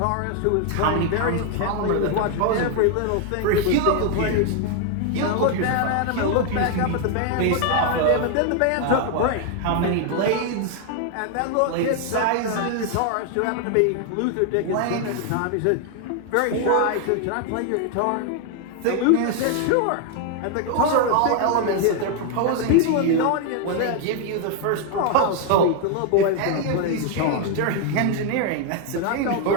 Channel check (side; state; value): both; different; correlation 0.00